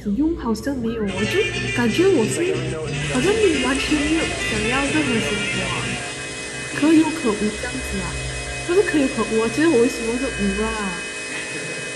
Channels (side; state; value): both; identical; correlation 1.00